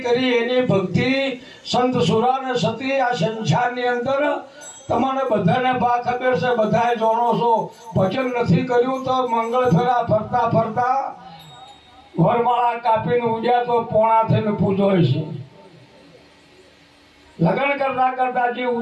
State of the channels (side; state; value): both; identical; correlation 1.00